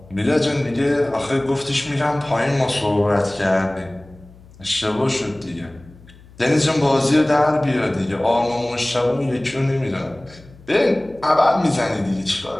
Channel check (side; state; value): left; noise; hum, 23 dB below the sound